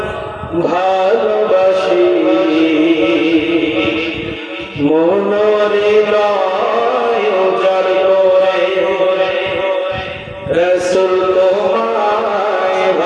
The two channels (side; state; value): both; identical; correlation 1.00